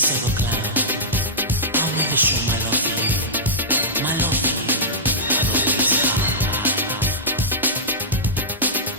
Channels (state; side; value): normal; both; correlation -0.13